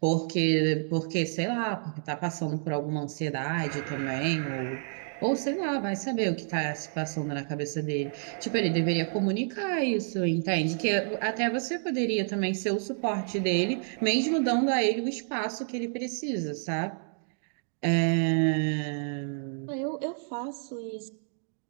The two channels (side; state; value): left; silent; digital silence